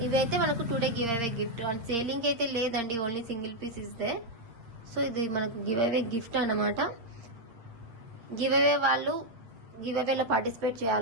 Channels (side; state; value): left; late; 8.7 ms